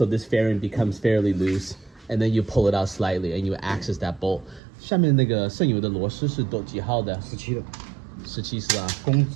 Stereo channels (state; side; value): drops out; left; at 4.6 s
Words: this fairing becomes fairly loose, and then you pull it out slightly and you access that bolt. 下面那个剩余的螺丝是几号的？17的。17是吧？公